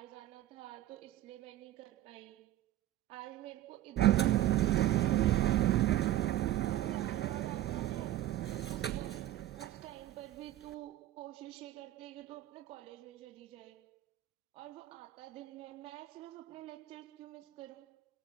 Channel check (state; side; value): quieter; left; 13.6 dB